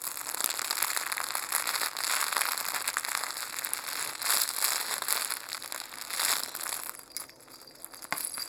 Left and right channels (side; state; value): both; identical; correlation 1.00